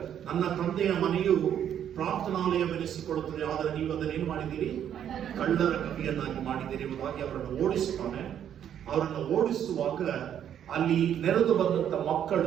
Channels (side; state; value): left; quieter; 9.6 dB